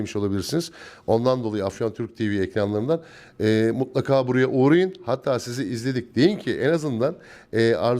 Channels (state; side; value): identical; both; correlation 1.00